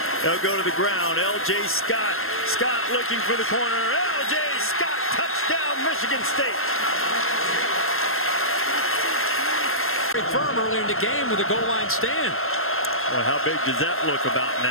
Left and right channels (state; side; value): late; right; 0.61 ms